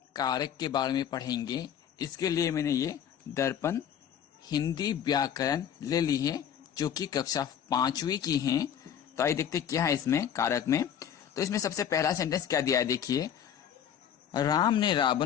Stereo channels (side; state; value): right; quieter; 9.1 dB